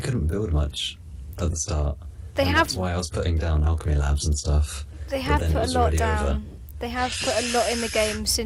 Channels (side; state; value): both; identical; correlation 1.00